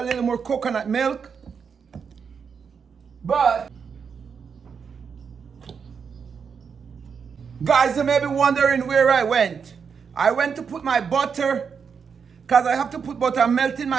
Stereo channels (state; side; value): quieter; left; 6.3 dB